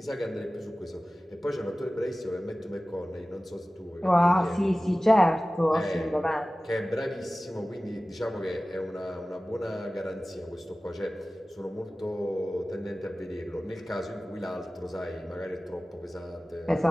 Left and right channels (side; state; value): both; normal; correlation 0.97